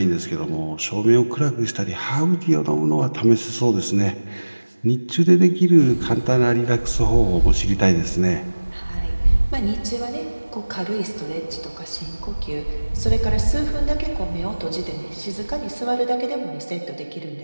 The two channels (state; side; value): inverted; both; correlation -1.00